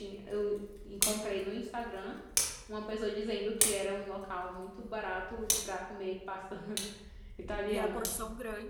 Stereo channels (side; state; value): both; identical; correlation 1.00